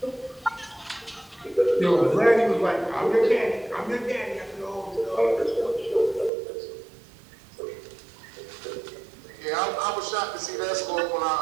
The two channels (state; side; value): drops out; left; at 6.3 s